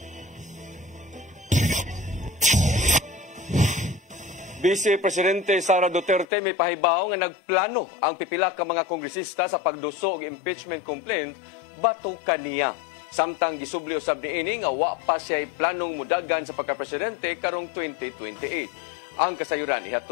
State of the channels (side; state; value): right; drops out; at 6.2 s